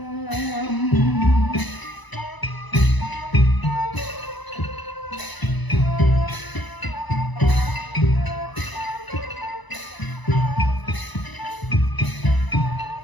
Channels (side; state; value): right; late; 1.0 ms